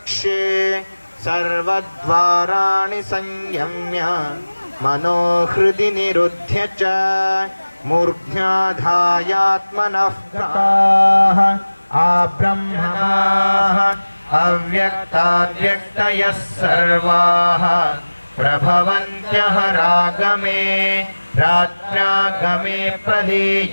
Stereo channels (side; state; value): both; inverted; correlation -1.00